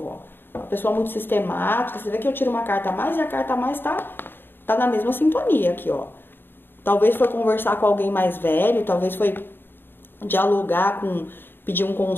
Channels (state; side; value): late; right; 0.099 ms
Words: ó. Uma pessoa muito sistemática. Você vê que eu tiro uma carta a mais e a carta a mais tá na mesma sintonia aqui, ó. Talvez foi conversar com alguém mais velho, talvez foi dialogar pedir um